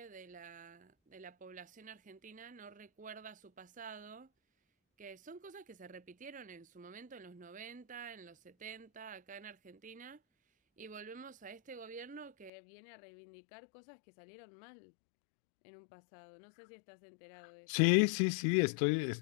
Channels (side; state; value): right; drops out; at 12.5 s